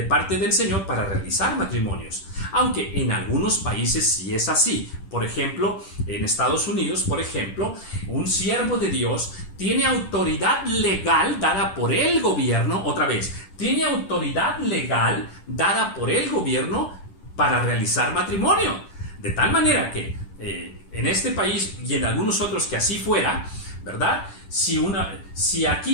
parte del Señor para realizar matrimonios. Aunque en algunos países sí es así. Por ejemplo, en Estados Unidos, por ejemplo, un siervo de Dios tiene autoridad legal dada por el gobierno, tiene autoridad legal dada por el gobierno para realizar matrimonio. De tal manera que en este país y en algunos otros que así fuera, ¿verdad? Si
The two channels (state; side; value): late; right; 10 ms